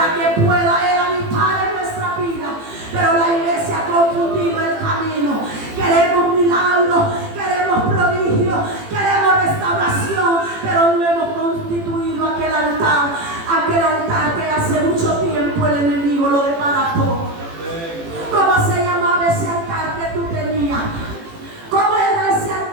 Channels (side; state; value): left; late; 18 ms